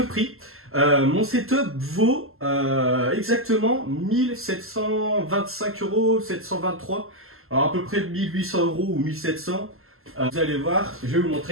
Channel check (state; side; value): late; left; 0.62 ms